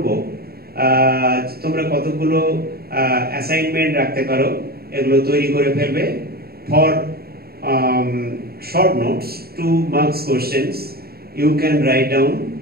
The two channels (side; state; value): left; late; 0.45 ms